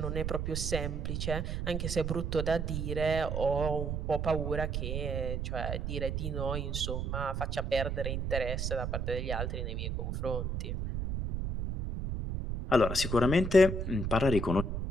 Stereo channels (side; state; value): right; noise; rumble, 2 dB below the sound